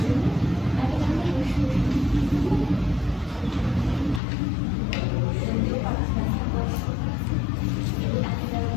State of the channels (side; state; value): right; drops out; at 4.2 s